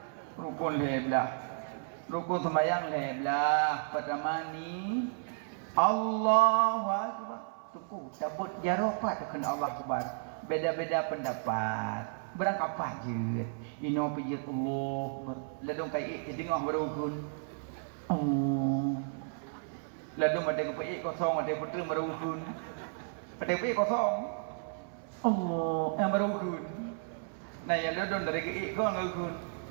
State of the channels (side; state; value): left; silent; 56 dB below the other